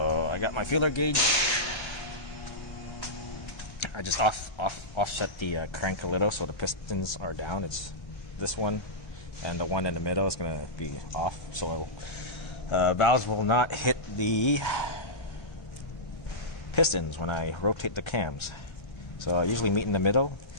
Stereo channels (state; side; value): late; right; 1.3 ms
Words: I got my feeler gauge. I just offset the crank a little so the pistons are down. It's this one, and the one in the middle is gonna be off, so valves will not hit the pistons when I rotate the cams. So I usually meet in the middle.